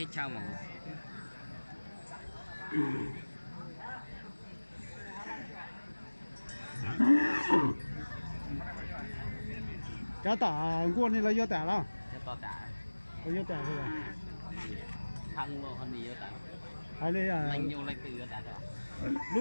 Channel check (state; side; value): inverted; both; correlation -1.00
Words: chao mà. Cá tả quân này là do tả đâu? Cho tả. Có do tả thôi à? Thăng luôn hơn gì tả. Hay đây à? Lành nhiều lành từ tả đó.